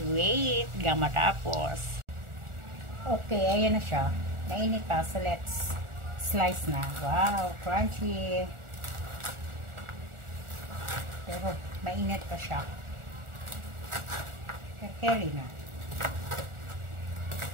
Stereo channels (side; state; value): left; late; 1.4 ms